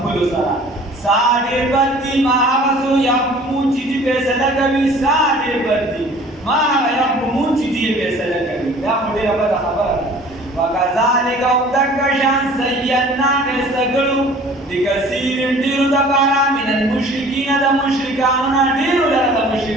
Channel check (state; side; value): normal; both; correlation 0.49